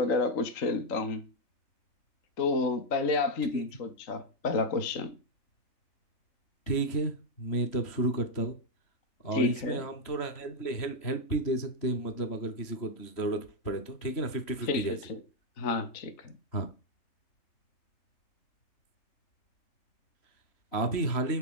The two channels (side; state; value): right; late; 3.1 ms